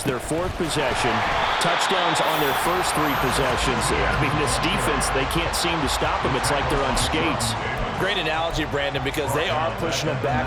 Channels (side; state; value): both; identical; correlation 1.00